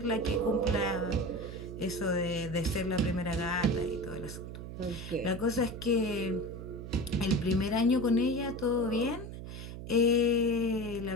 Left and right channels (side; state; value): right; noise; hum, 10 dB below the sound